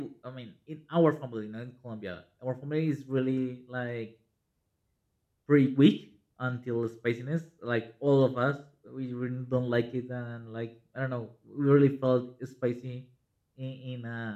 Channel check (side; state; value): both; identical; correlation 1.00